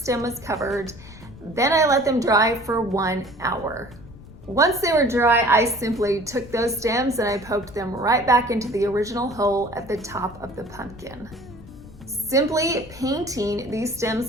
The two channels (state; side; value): noise; left; rumble, 19 dB below the sound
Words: was covered. Then I let them dry for 1 hour. Once they were dry, I simply took those stems and I poked them right back into the original hole at the top of the pumpkin. Simply painting these